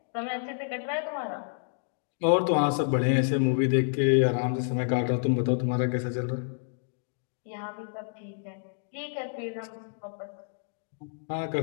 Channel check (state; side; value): silent; right; digital silence